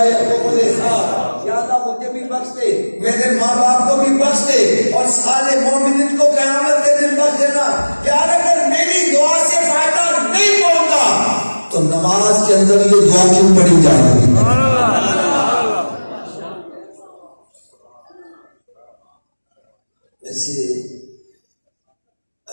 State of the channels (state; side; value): inverted; both; correlation -1.00